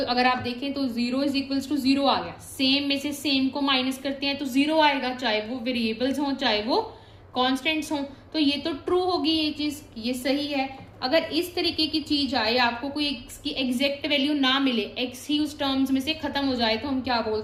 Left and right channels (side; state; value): both; identical; correlation 1.00